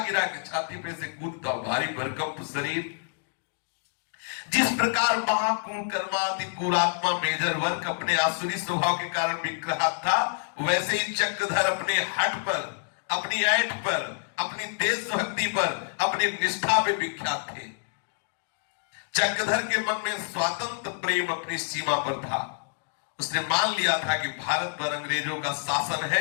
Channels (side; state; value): right; silent; digital silence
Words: गिरा के छाती पे से कूदता, भारी भरकम शरीर। जिस प्रकार महाकुकर्माति कुरात्मा मेजर वर्क अपने आसुरी स्वभाव के कारण विग्रहात था, वैसे ही चक्रधर अपने हट पर, अपनी ऐठ पर, अपनी देशभक्ति पर, अपनी निष्ठा पे विख्यात थे। चक्रधर के मन में स्वातंत्र प्रेम अपनी सीमा पर था। उसने मान लिया था कि भारत पर अंग्रेजों का शासन